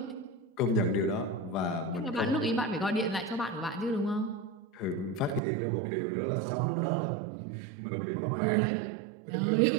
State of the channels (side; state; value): left; drops out; at 5.4 s